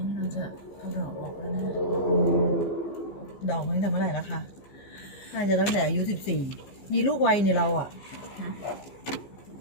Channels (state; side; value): late; right; 15 ms